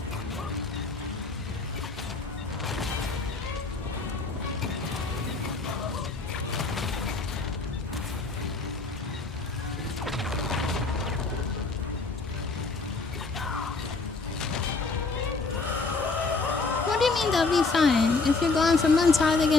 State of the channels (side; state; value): right; quieter; 3.9 dB